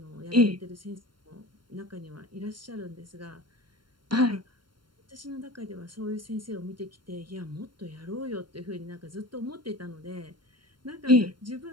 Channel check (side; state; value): left; late; 0.72 ms